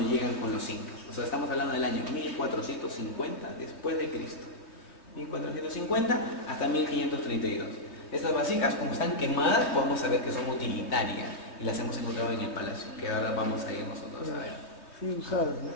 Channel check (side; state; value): right; late; 3.2 ms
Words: llegan con los incas. O sea, estamos hablando del año 1450 después de Cristo. 1450 hasta 1532. Estas vasijas, como están quemadas, podemos saber que son utilitarias y las hemos encontrado en el palacio, que ahora vamos a ir nosotros a ver. Sí, usadas, ¿no?